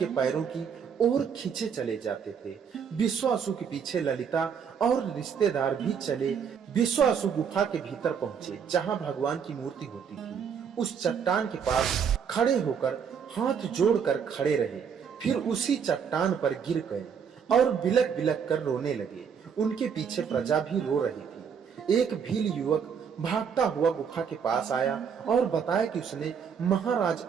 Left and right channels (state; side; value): quieter; left; 7.1 dB